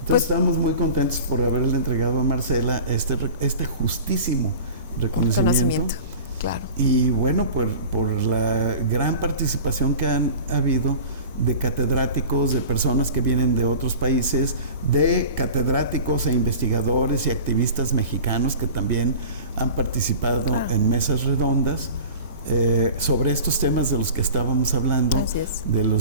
Pues, estamos muy contentos por haberle entregado a Marcela este justísimo reconocimiento. Claro. Y bueno, por la gran participación que han habido de catedráticos, de personas que vienen de otros países, de catedráticos e investigadores y activistas mexicanos que también han participado en mesas redondas sobre estos temas de los que estábamos hablando, de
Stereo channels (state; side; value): inverted; both; correlation -0.38